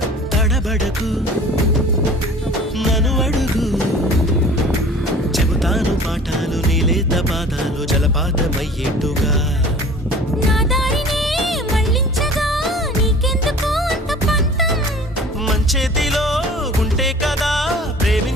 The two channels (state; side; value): normal; both; correlation 0.46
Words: తడబడకు నన్ను అడుగు చెబుతాను పాఠాలు నీలేత పాదాలు జలపాతమయ్యేట్టుగా నా దారినే మళ్ళించగా నీకెందుకు అంత పంతం మంచేతిలో ఉంటే కదా